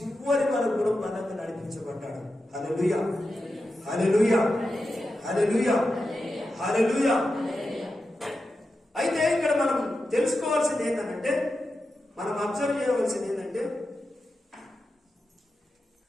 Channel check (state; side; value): normal; both; correlation 0.90